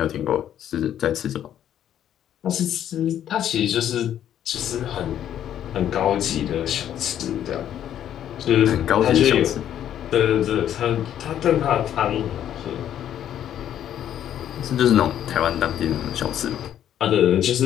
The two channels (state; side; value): quieter; right; 10.6 dB